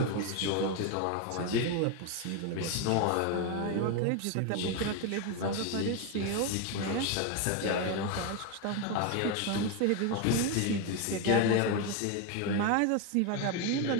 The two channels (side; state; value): both; different; correlation 0.02